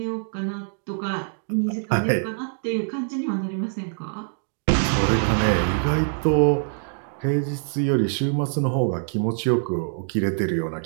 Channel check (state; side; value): silent; left; digital silence